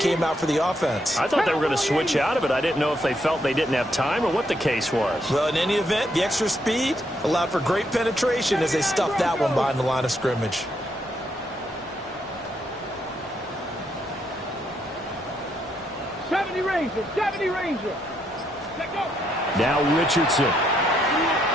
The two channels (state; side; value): normal; both; correlation 0.76